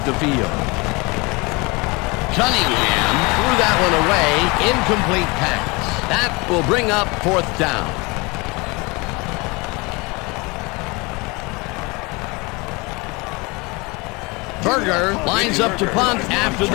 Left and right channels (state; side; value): quieter; right; 26.4 dB